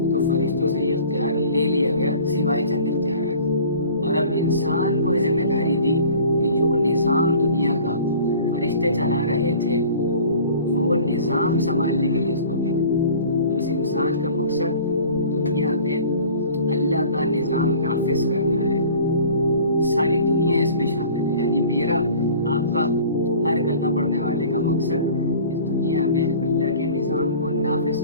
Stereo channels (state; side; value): inverted; both; correlation -0.46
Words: تو فرشتوں سے یہ اختیار لے لیا گیا، سوائے چند اختیارات، اور اب انسان کو یہ ذمہ داری دی کہ جو نظام دنیا کا فرشتے چلا رہے تھے وہ نظام سنبھالنے کے لیے اس کو بھیجا۔ تو اس انسان کا مقصد دنیا میں اللہ کا نظام نافذ کرنا ہے، ساری دنیا اس میں شامل ہے، یعنی میرا آپ کا ہر کلمہ پڑھنے والے کا مقصد اس دنیا میں اللہ کے نظام کو نافذ